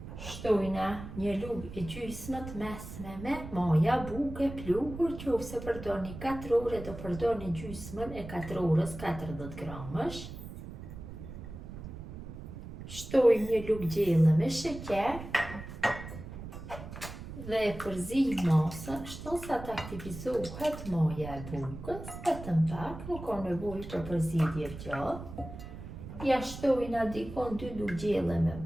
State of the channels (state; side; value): noise; right; rumble, 11 dB below the sound